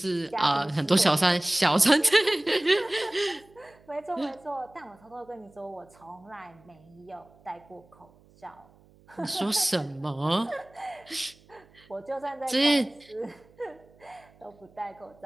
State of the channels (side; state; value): right; noise; hum, 28 dB below the sound